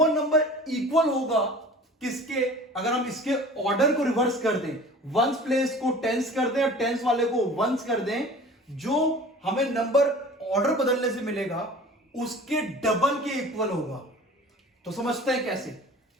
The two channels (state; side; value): normal; both; correlation 0.42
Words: नंबर इक्वल होगा किसके? अगर हम इसके ऑर्डर को रिवर्स कर दें, वंस प्लेस को टेंस कर दें और टेंस वाले को वंस कर दें, जो हमें नंबर ऑर्डर बदलने से मिलेगा उसके डबल के इक्वल होगा। तो समझते हैं कैसे?